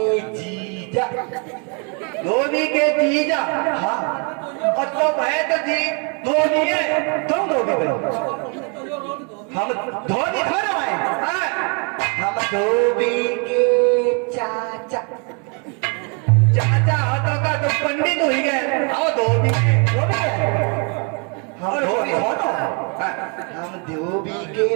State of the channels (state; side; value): quieter; left; 35.9 dB